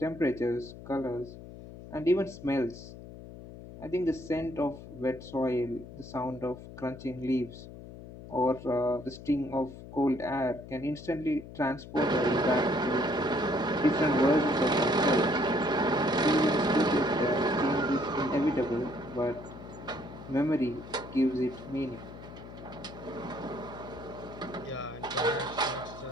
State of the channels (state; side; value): noise; left; hum, 14 dB below the sound